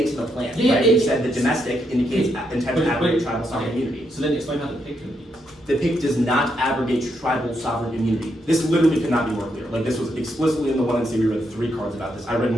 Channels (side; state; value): both; normal; correlation 0.79